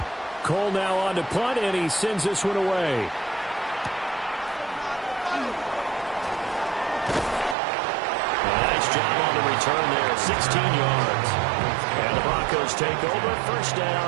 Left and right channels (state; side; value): drops out; left; at 7.6 s